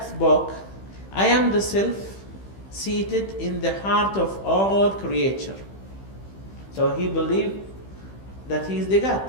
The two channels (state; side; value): late; right; 15 ms